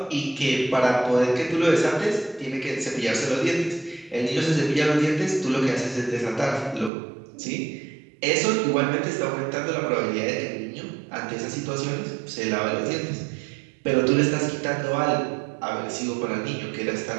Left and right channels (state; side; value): drops out; left; at 6.9 s